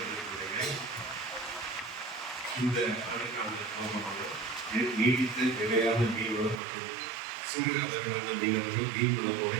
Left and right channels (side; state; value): left; drops out; at 6.6 s